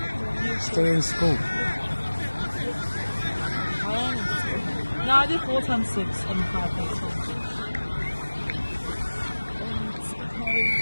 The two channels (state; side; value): inverted; both; correlation -1.00